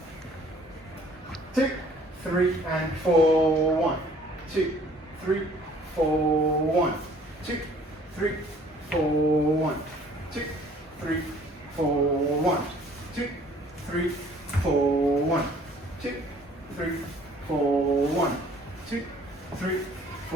2, 3, and 4, 1, 2, 3, 4, 1, 2, 3, 4, 1, 2, 3, 4, 1, 2, 3, 4, 1, 2, 3, 4, 1, 2, 3,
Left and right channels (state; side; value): normal; both; correlation 0.56